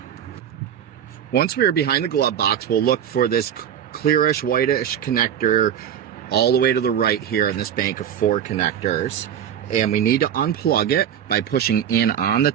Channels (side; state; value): left; quieter; 9.4 dB